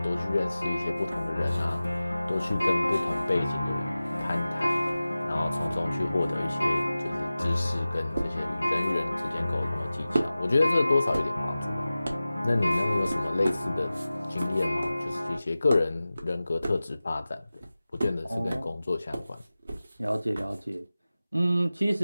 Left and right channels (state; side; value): inverted; both; correlation -0.96